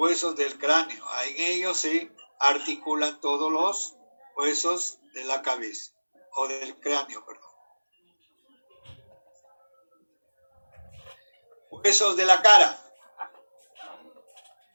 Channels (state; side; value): inverted; both; correlation -1.00